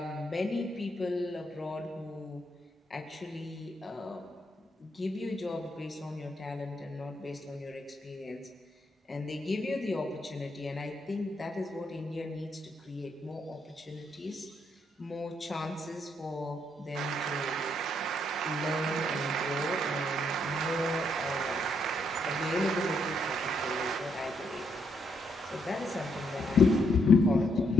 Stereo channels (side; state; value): both; normal; correlation 0.75